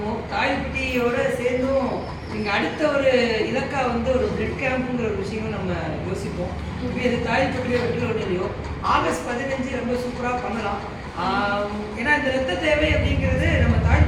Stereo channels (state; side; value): identical; both; correlation 1.00